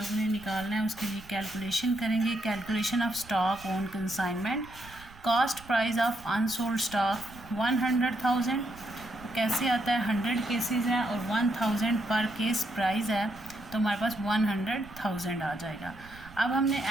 ने निकालना है, उसके लिए कैलकुलेशन करेंगे। Calculation of stock on consignment, cost price of unsold stock 100,000। कैसे आता है, 100 केसेस हैं और 1000 पर केस प्राइस है, तो हमारे पास 100,000 आ जाएगा। अब हमने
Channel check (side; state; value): right; noise; rumble, 20 dB below the sound